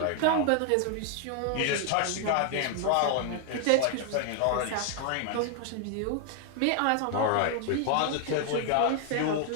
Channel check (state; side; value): different; both; correlation 0.00